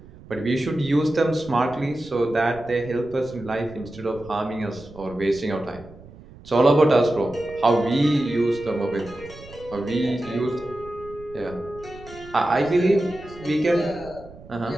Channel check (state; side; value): noise; right; rumble, 19 dB below the sound